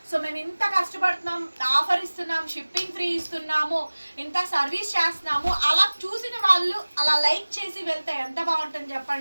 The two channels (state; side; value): inverted; both; correlation -1.00